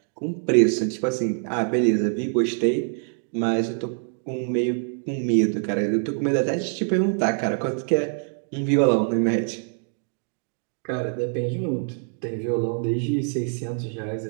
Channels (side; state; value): left; silent; 62 dB below the other